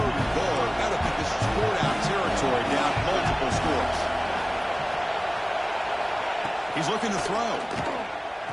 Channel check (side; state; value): both; identical; correlation 1.00